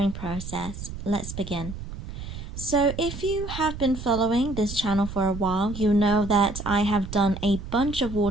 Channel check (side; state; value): right; noise; rumble, 10 dB below the sound